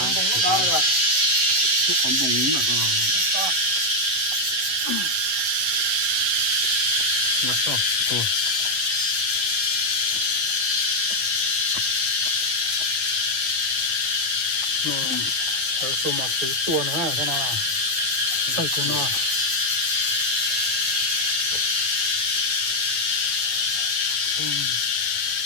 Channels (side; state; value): left; late; 9.3 ms